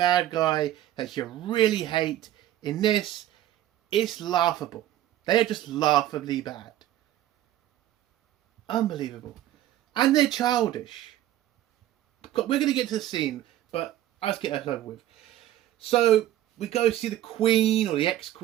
guy that you really hate. In this, it's laughable. They are just laughably bad. Unbelievable. And they're childish. We're going to get to the scene, but let's get that over with. So, we go see the Queen, or the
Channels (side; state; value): left; quieter; 13.3 dB